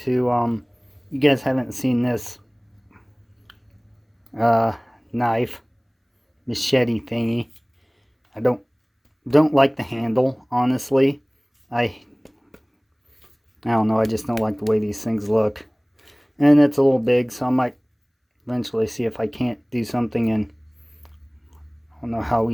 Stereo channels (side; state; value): both; identical; correlation 1.00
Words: you guys haven't seen this knife, machete thingy. I don't like the handle, honestly. I don't know, I just don't like the way these things look. And it's a little big, so I might eventually see if I can't do something, and I don't know how